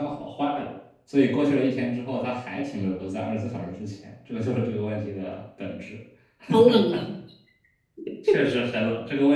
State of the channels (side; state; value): both; identical; correlation 1.00